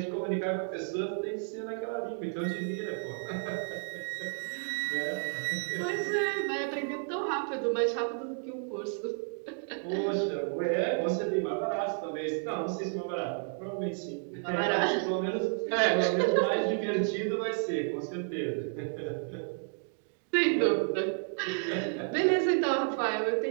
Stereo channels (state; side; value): silent; left; 57 dB below the other